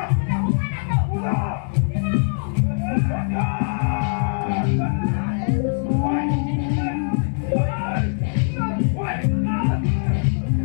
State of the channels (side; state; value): right; silent; 64 dB below the other